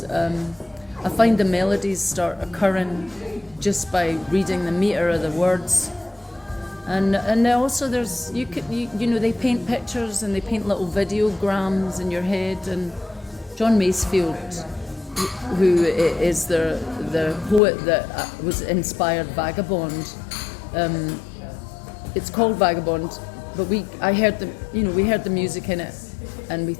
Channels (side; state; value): right; drops out; at 17.6 s